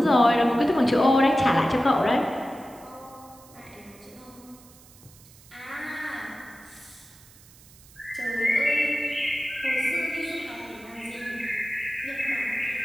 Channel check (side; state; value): right; noise; hiss, 24 dB below the sound